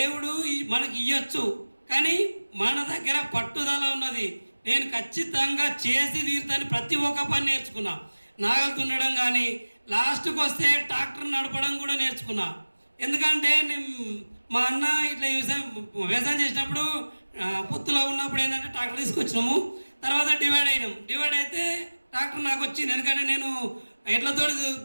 మనకి ఇవ్వచ్చు, కానీ మన దగ్గర పట్టుదల ఉన్నది. నేను ఖచ్చితంగా చేసి తీరుతాను. ప్రతి ఒక్క పని నేర్చుకున్నా. నాగలు దున్నడం కానీ, లాస్ట్కి వస్తే ట్రాక్టర్ నడపడం కూడా నేర్చుకున్నా. ఎందుకంటే మా అన్న ఇట్లా వ్యవసాయం చేసినప్పుడు పొత్తులో ఉన్నప్పుడు ఏంటంటే ట్రాక్టర్ తీసుకొచ్చినాము. తర్వాత డివైడ్ అయినాం. డివైడ్ అయితే ట్రాక్టర్ నాకు వచ్చింది. ఎందుకంటే నేను ఎడ్లతో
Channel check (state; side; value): inverted; both; correlation -1.00